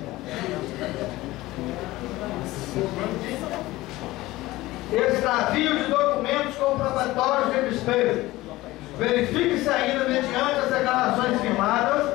Extravio de documentos comprobatórios de despesa. Verifique-se ainda, mediante as declarações firmadas,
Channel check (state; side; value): quieter; right; 18.2 dB